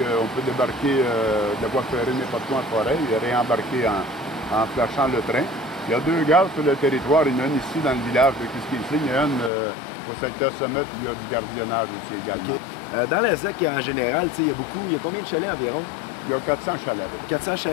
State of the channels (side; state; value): right; drops out; at 9.5 s